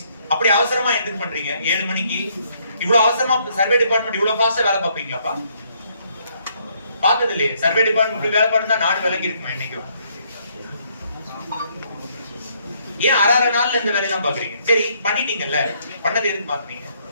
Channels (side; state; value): both; inverted; correlation -0.69